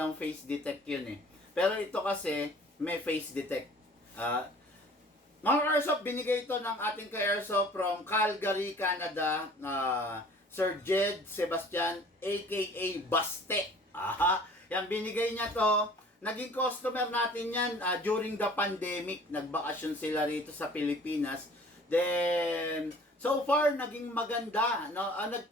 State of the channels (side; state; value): both; normal; correlation 0.50